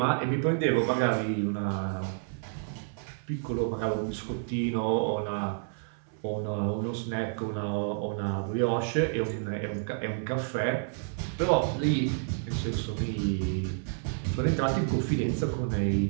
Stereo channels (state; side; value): silent; left; 58 dB below the other